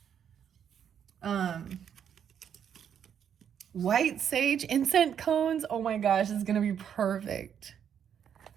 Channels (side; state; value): left; quieter; 8.5 dB